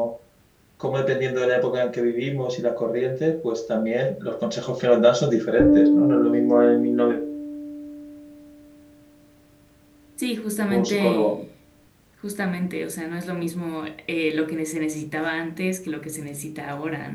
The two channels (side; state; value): both; identical; correlation 1.00